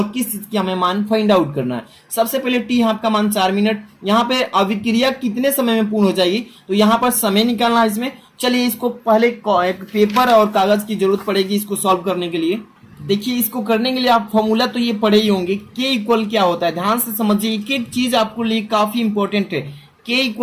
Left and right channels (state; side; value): identical; both; correlation 1.00